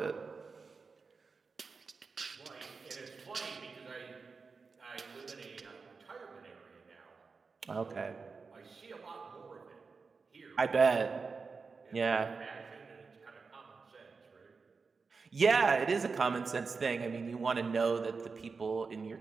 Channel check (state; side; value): quieter; left; 4.7 dB